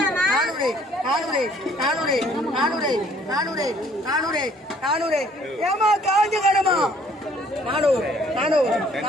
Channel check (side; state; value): both; normal; correlation 0.59